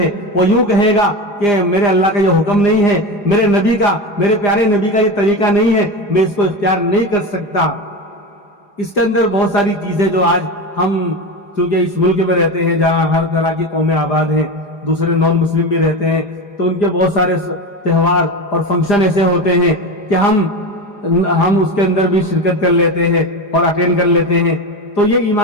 وہ یوں کہے گا کہ میرے اللہ کا یہ حکم نہیں ہے، میرے نبی کا، میرے پیارے نبی کا یہ طریقہ نہیں ہے، میں اس کو اختیار نہیں کر سکتا۔ اس کے اندر بہت ساری چیزیں جو آج ہم چونکہ اس ملک میں رہتے ہیں جہاں ہر طرح کی قومیں آباد ہیں، دوسرے نان مسلم بھی رہتے ہیں، تو ان کے بہت سارے تہوار اور فنکشن ایسے ہوتے ہیں کہ ہم اس کے اندر بھی شرکت کر لیتے ہیں اور اٹینڈ کر لیتے ہیں، تو یہ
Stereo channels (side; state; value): right; late; 4.9 ms